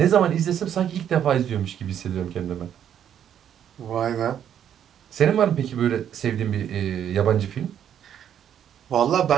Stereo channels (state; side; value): quieter; left; 9.5 dB